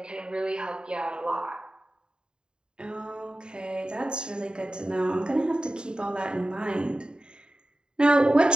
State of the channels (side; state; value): left; late; 0.049 ms